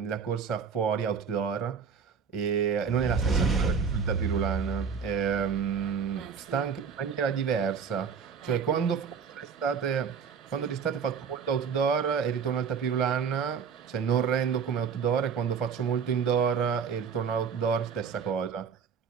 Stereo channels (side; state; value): left; quieter; 6.4 dB